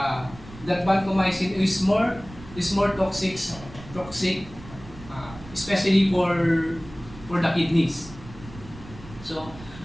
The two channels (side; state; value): right; noise; rumble, 17 dB below the sound